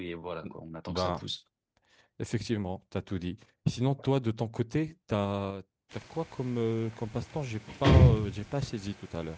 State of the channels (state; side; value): identical; both; correlation 1.00